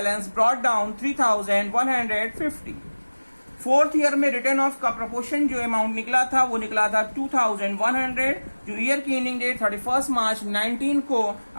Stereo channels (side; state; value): both; inverted; correlation -1.00